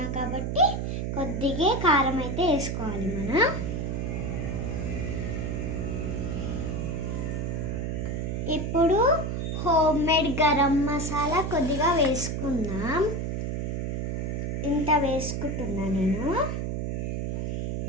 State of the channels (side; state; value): right; noise; hum, 1 dB below the sound